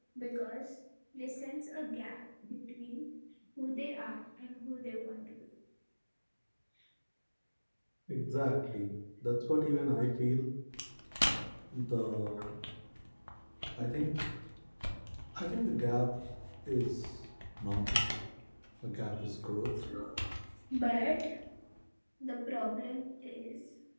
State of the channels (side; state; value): both; inverted; correlation -1.00